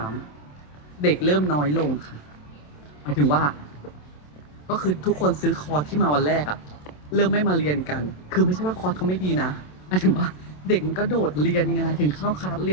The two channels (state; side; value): late; right; 27 ms